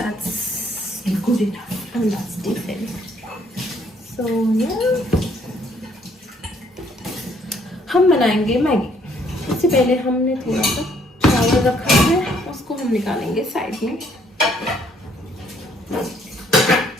good enough and that's decent. So yeah, हम बनाएंगे मैगी। इससे पहले हमने थोड़ा सा चावल रखा है, उसको हम निकालेंगे साइड में।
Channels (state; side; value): normal; both; correlation 0.65